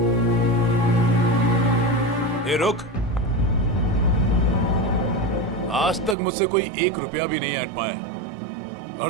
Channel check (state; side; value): drops out; left; at 6.2 s